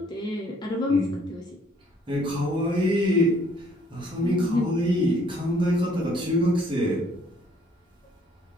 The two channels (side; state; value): both; normal; correlation 0.62